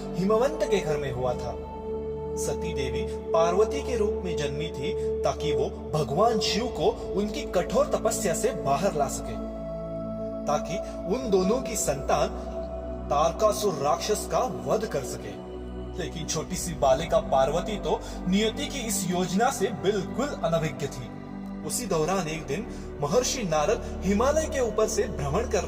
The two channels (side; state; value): both; identical; correlation 1.00